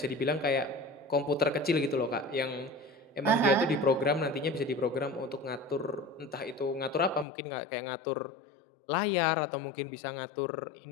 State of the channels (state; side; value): drops out; right; at 7.2 s